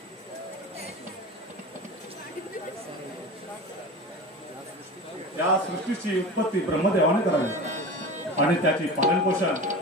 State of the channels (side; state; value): both; normal; correlation 0.31